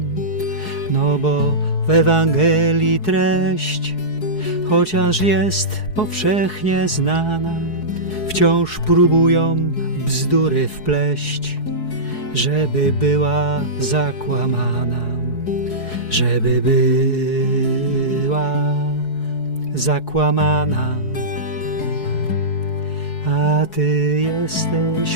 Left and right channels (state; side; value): late; right; 4.7 ms